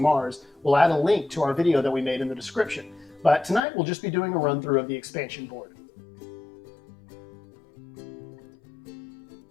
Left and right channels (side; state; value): right; drops out; at 3.6 s